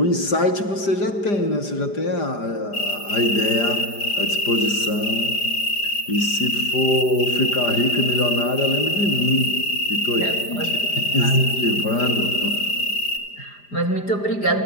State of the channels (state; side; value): late; right; 5.0 ms